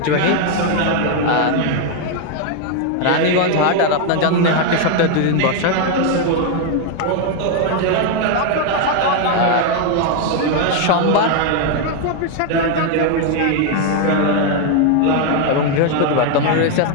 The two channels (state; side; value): different; both; correlation 0.01